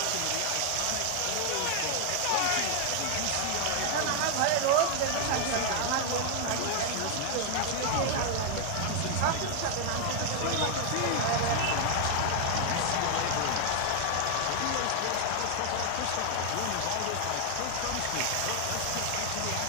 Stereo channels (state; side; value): different; both; correlation 0.00